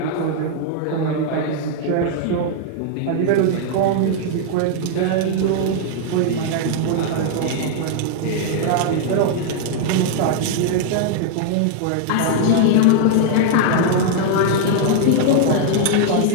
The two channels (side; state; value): both; different; correlation -0.01